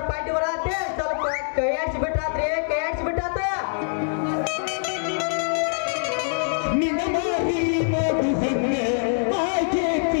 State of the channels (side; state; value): right; silent; 63 dB below the other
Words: ಪಾರ್ಟಿ ಬರತ್ತೆ, ಸ್ವಲ್ಪ ಕೈ ಆಡ್ಸಿ ಬಿಟ್ರಾತ್ರಿ, ಕೈ ಆಡ್ಸಿ ಬಿಟ್ರಾತ.